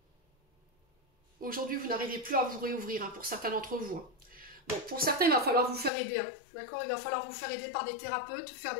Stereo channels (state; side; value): drops out; right; at 5.9 s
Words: Aujourd'hui, vous n'arrivez plus à vous réouvrir, hein, pour certains d'entre vous. Hein. Bon, pour certains, il va falloir vous faire aider. Hein, d'accord, il va falloir vous faire aider par des thérapeutes, faire